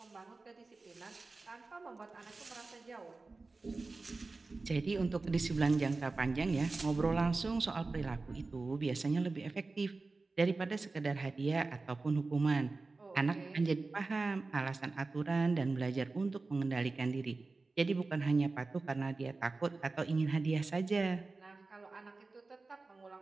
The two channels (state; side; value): quieter; left; 3.6 dB